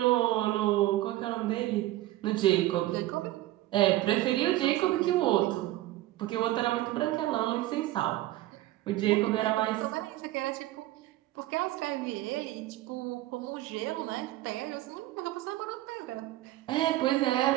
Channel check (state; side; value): quieter; left; 16.2 dB